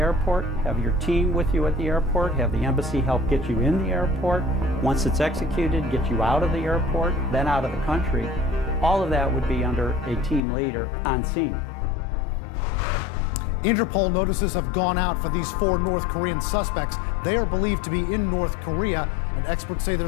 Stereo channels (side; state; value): right; drops out; at 10.4 s